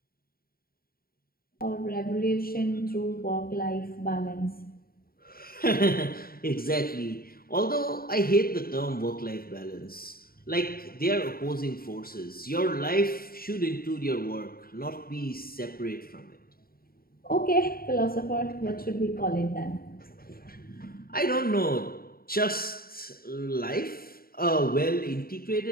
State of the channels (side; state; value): right; late; 0.43 ms